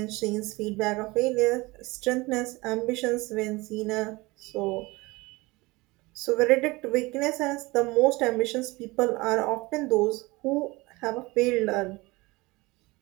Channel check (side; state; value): left; quieter; 22.6 dB